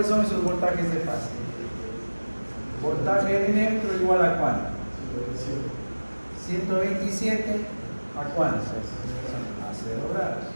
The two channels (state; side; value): inverted; both; correlation -1.00